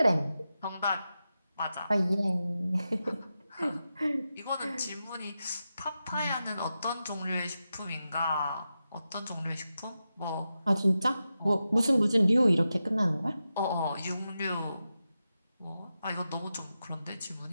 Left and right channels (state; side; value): inverted; both; correlation -0.90